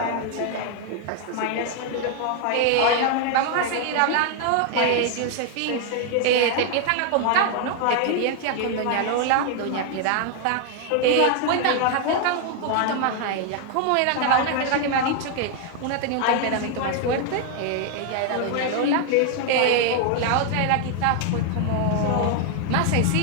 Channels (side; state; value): both; different; correlation 0.00